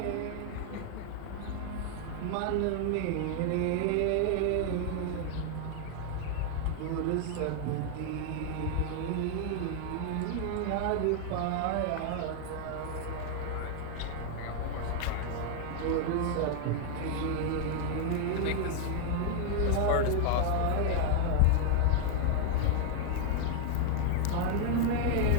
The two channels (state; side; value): different; both; correlation 0.00